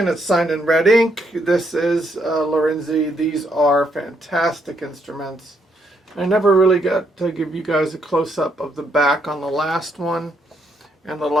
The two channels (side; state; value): both; normal; correlation 0.75